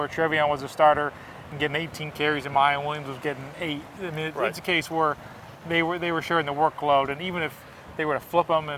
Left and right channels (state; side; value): identical; both; correlation 1.00